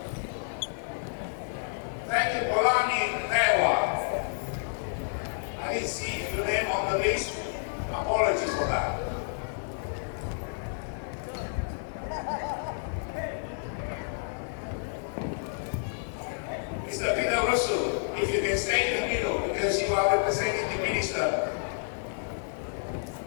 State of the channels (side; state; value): right; silent; digital silence